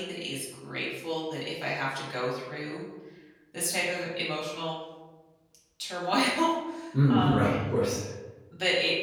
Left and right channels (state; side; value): identical; both; correlation 1.00